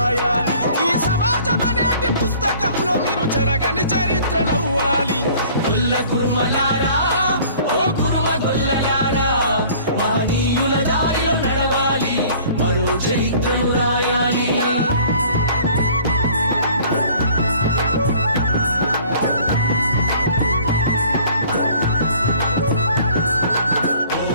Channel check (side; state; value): both; inverted; correlation -0.51